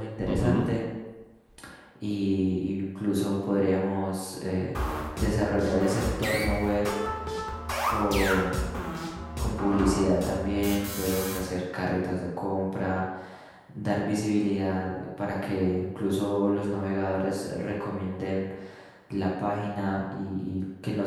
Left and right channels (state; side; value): identical; both; correlation 1.00